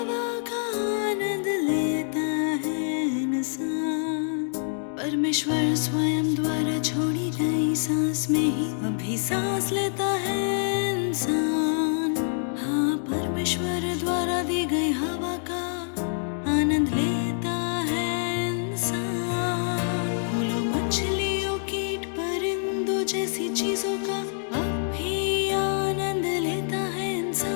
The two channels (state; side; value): silent; right; digital silence